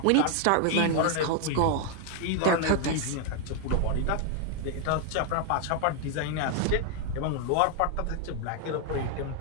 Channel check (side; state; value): both; different; correlation 0.00